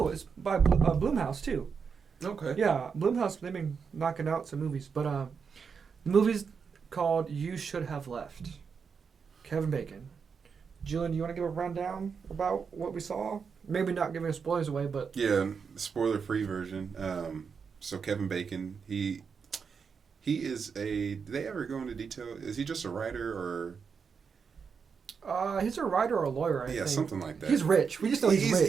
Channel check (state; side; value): quieter; left; 6.0 dB